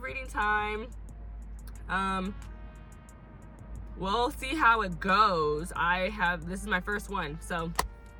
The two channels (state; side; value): identical; both; correlation 1.00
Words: reading time. We'll see how it goes. This is my first one. So,